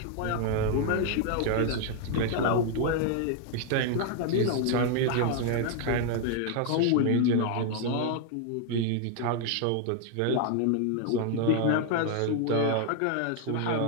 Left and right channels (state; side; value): different; both; correlation 0.00